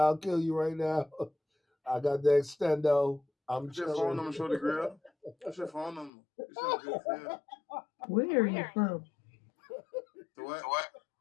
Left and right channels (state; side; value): drops out; right; at 6.1 s